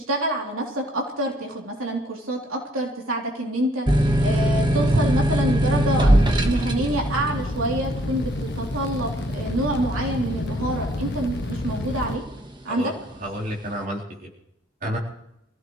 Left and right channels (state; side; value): normal; both; correlation 0.65